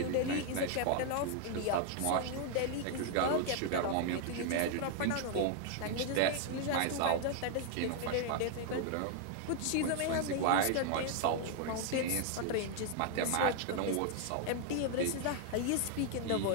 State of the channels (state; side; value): different; both; correlation 0.00